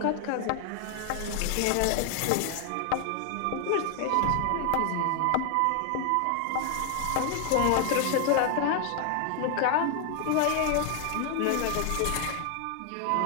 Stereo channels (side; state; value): both; different; correlation 0.00